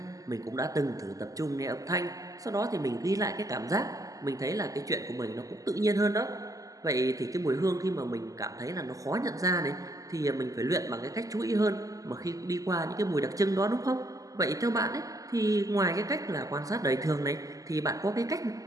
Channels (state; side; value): late; left; 0.17 ms